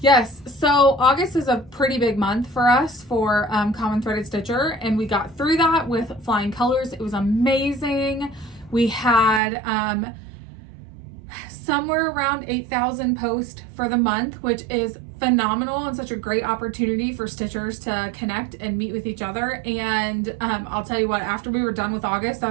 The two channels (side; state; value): left; drops out; at 9.4 s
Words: so August is a pretty big month for us for Common Threaded Stitcher, and we got through that with flying colors. It was amazing. We had somewhere around 8,000 posts for the month, which is phenomenal and such a great opportunity for stitchers to connect and meet with each other. And I'll tell you what, after we were done with August, I